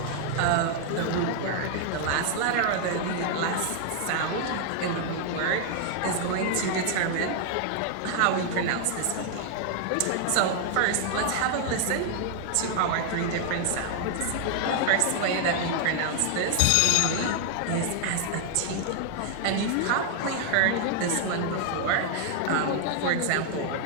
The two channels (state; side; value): different; both; correlation 0.00